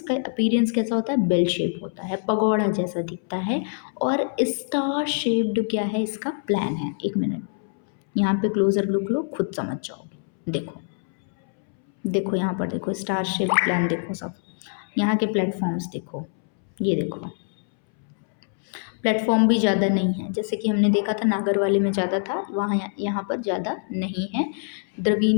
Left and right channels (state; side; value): silent; right; 62 dB below the other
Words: अपीरियंस कैसा होता है, बेल शेप होता है, पगोड़ा जैसा दिखता है। और स्टार शेप्ड क्या है, इसका प्लान है। एक मिनट, यहाँ पे क्लोजर लुक लो, खुद समझ जाओगे। देखो देखो यहाँ पर देखो, स्टार शेप प्लान देखो सब। यहाँ के प्लेटफॉर्म्स देखो, ये देखो, प्लेटफॉर्म भी ज़्यादा नहीं है, जैसे कि हमने देखा था नागर वाले में ज़्यादा था, वहाँ यहाँ पर ज़्यादा नहीं है।